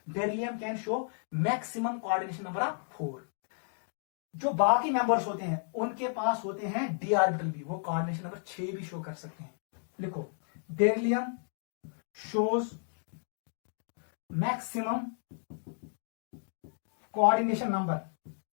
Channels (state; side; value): silent; right; digital silence